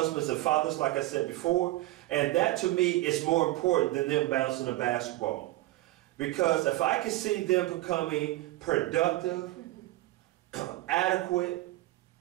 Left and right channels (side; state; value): left; quieter; 17.5 dB